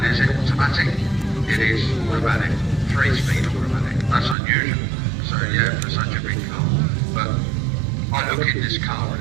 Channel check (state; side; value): drops out; left; at 4.4 s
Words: is it automatic? It is automatic, 3-speed automatic. That's unusual, so yeah, for such a big car. But I look in this car